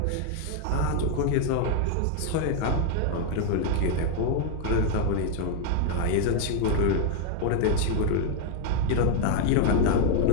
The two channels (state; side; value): different; both; correlation 0.00